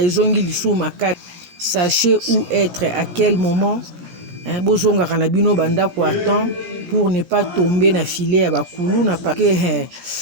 Sachez où être, à quel moment. Pour ne pas tomber dans le filet à Bakulu.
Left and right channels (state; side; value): late; left; 17 ms